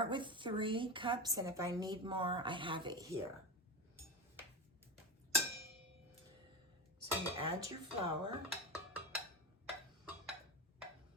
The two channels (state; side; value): normal; both; correlation 0.21